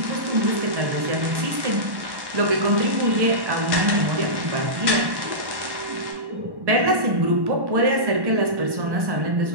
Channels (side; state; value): left; late; 1.1 ms